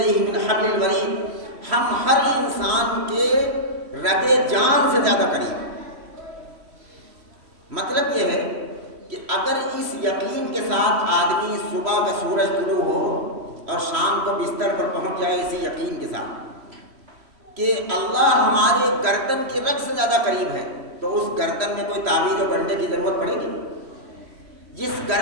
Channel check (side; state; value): left; late; 3.0 ms